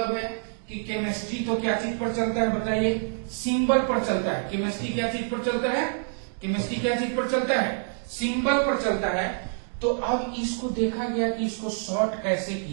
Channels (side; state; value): left; silent; digital silence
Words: है कि केमिस्ट्री तो क्या चीज पर चलता है बताइए? सिंबल पर चलता है। केमिस्ट्री क्या चीज पर चलता है? केमिस्ट्री क्या चीज पर चलता है? सिंबल पर चलता है। तो अब इसको देखा गया कि इसको शॉर्ट कैसे